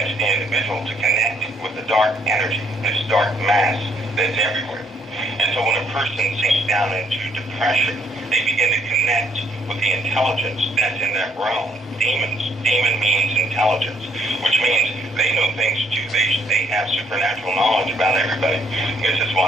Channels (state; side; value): normal; both; correlation 0.68